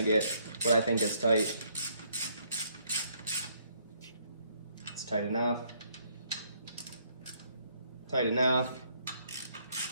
get what I think is tight. It's tight enough. Tight enough.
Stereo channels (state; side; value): inverted; both; correlation -0.69